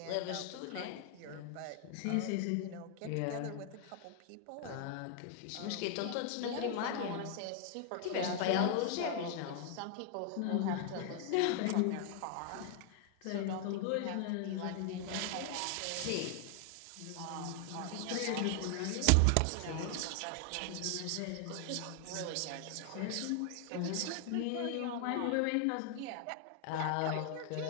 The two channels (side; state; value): both; different; correlation 0.00